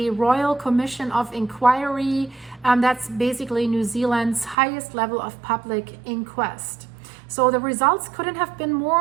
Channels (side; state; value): left; drops out; at 4.5 s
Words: Royal Commission of Inquiry, that's basically New Zealand's highest level of public inquest. So the results couldn't have been